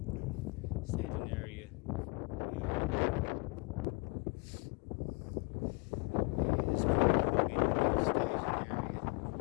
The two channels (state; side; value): quieter; right; 30.8 dB